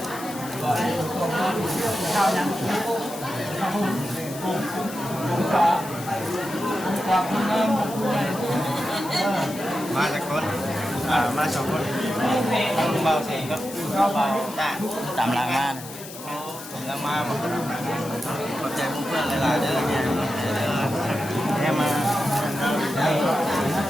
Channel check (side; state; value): left; noise; hiss, 14 dB below the sound